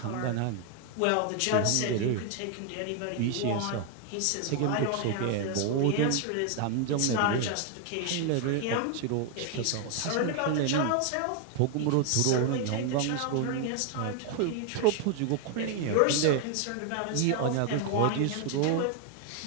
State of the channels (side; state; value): both; different; correlation 0.00